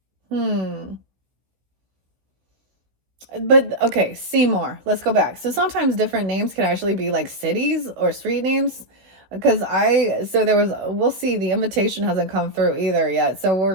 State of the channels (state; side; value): late; left; 16 ms